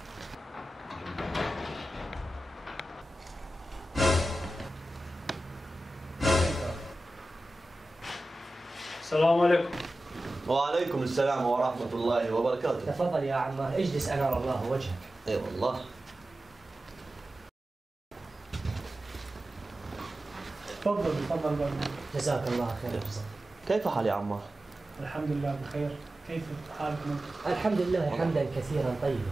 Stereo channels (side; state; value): both; normal; correlation 0.94